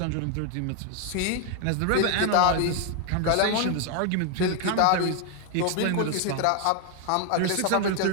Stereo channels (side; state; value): both; different; correlation 0.01